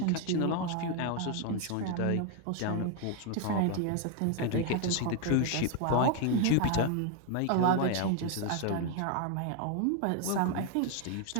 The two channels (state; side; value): different; both; correlation 0.01